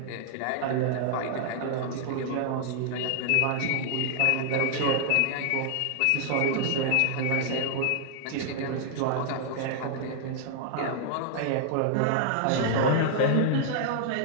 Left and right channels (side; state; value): both; different; correlation 0.00